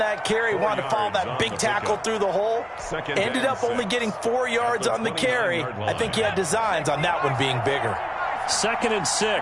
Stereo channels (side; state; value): both; identical; correlation 1.00